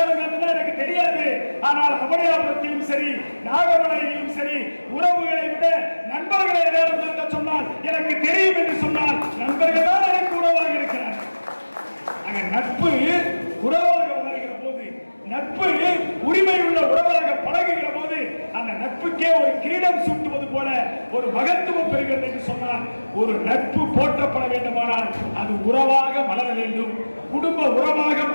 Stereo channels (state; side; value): inverted; both; correlation -1.00